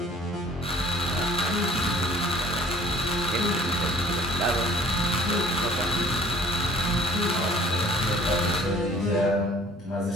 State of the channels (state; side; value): normal; both; correlation 0.52